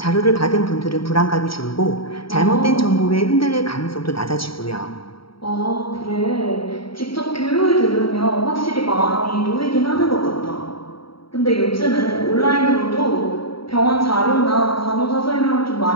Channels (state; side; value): late; right; 0.75 ms